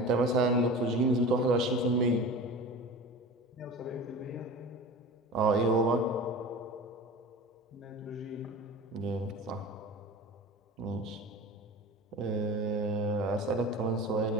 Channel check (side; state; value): both; normal; correlation 0.34